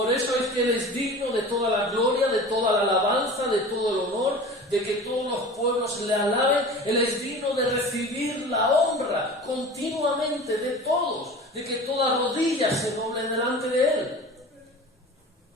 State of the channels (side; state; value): both; normal; correlation 0.37